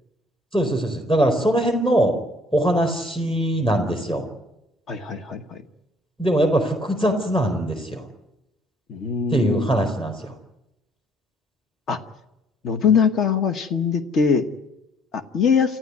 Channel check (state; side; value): normal; both; correlation 0.60